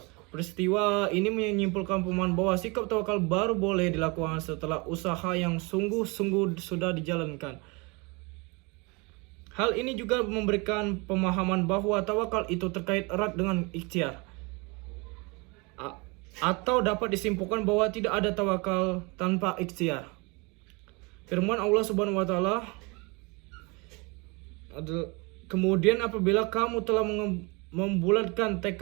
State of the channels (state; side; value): quieter; left; 28.2 dB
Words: Peristiwa ini menyimpulkan pemahaman bahwa sikap tawakal baru boleh dilakukan setelah usaha yang sungguh-sungguh sudah dijalankan. Hal ini juga memberikan pemahaman bahwa tawakal itu terkait erat dengan ikhtiar. Atau dapat disimpulkan bahwa tidak ada tawakal tanpa ikhtiar. Firman Allah Subhanahu wa taala, "Kemudian apabila kamu telah membulatkan